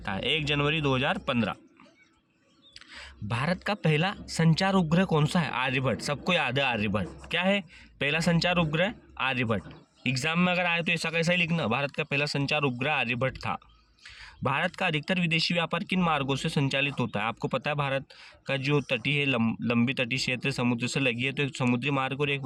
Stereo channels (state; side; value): identical; both; correlation 1.00